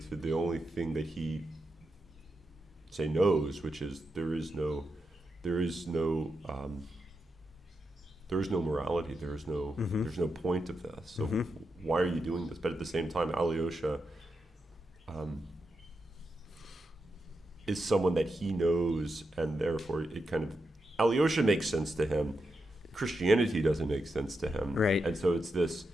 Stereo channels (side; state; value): both; normal; correlation 0.86